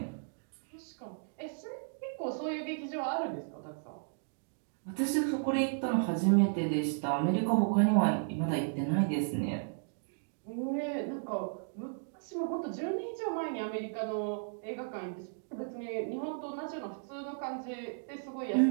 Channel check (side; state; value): left; silent; digital silence